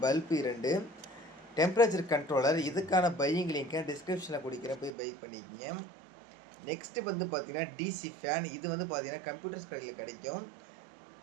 பல்பு 2, டெம்பரேச்சர் கண்ட்ரோலர். இதுக்கான பையிங் லிங்கை டிஸ்கிரிப்ஷனில் கொடுக்குறேன், போய் பை பண்ணிக்கங்க. நெக்ஸ்ட்டு வந்து பார்த்தீங்கன்னா டிசி ஃபேன். இது வந்து பார்த்தீங்கன்னா கம்ப்யூட்டர்ஸ் கடையில் கிடைக்கும்.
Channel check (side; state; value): left; drops out; at 4.9 s